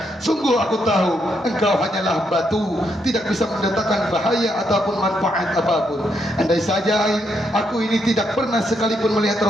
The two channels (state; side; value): normal; both; correlation 0.78